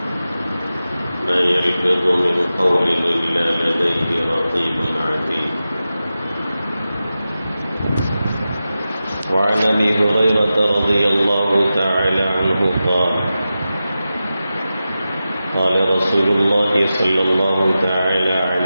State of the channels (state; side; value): inverted; both; correlation -0.93